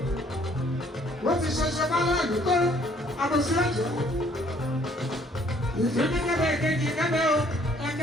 Wọ́n ti ṣẹṣẹ bá láàlú tó àbòsí ọ̀jẹ̀. Ìfúnni kẹ́bẹ̀ ìkejì kẹ́bẹ̀ o.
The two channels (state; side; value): normal; both; correlation 0.62